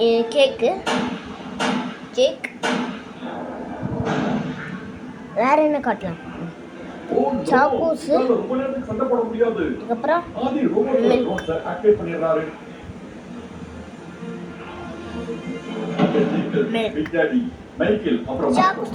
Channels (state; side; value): identical; both; correlation 1.00